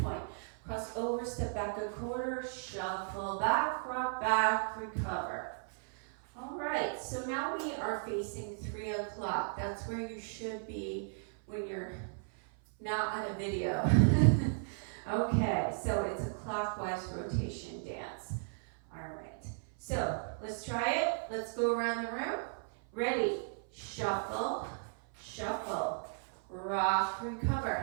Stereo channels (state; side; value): silent; left; 54 dB below the other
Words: cross over, step back a quarter, shuffle back, rock back, recover. All right, so now we are facing 3 o'clock. That's where you should be when you're not on a video. Okay, so it's a clockwise rotation dance. All right, so let's try it. Let's go around the room. Ready, shuffle, shuffle, rock,